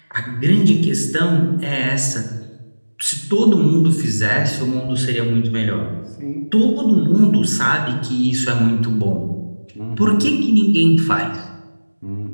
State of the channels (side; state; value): both; inverted; correlation -1.00